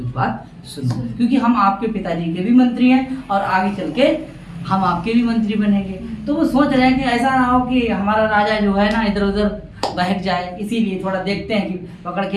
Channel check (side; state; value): both; identical; correlation 1.00